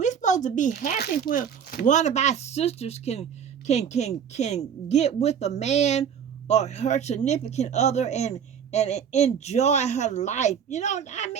supposed to be happy when one of our sisters can get with a man or her significant other and enjoy her life. I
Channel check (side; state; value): left; quieter; 7.9 dB